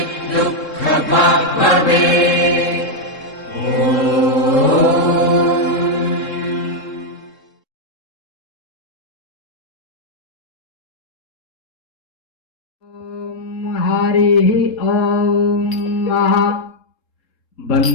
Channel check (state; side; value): late; right; 3.7 ms